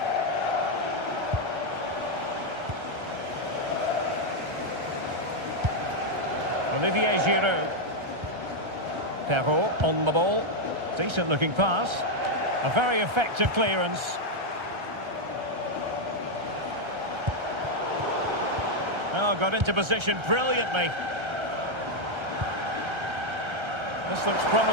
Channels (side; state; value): left; late; 1.3 ms